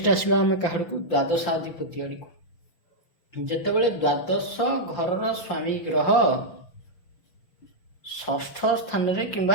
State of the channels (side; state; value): right; late; 6.2 ms